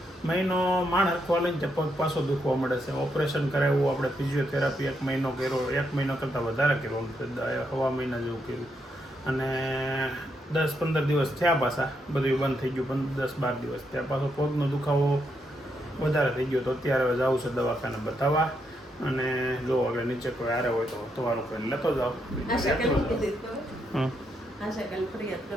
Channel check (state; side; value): normal; both; correlation 0.79